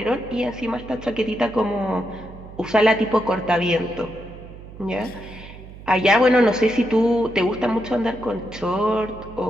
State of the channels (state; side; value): noise; right; hum, 16 dB below the sound